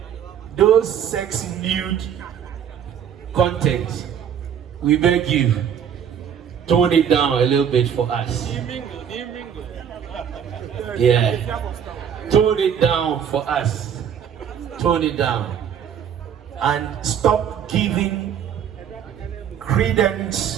those sex nude content, we beg you, tone it down a little bit for us. Yeah, tone it down for us. Tone it down. And stop giving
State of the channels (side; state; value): left; quieter; 8.5 dB